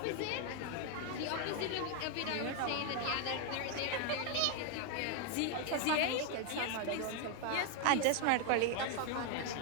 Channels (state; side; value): different; both; correlation 0.01